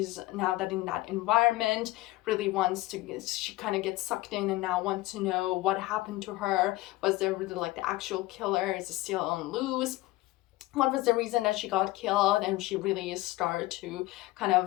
now that in that environment really she kind of gets sucked in and now wants to know what happened to her. Was there really like the actual killer? Is it still on loose? What was the reason that she got killed? And she really started to kind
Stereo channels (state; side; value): quieter; right; 18.8 dB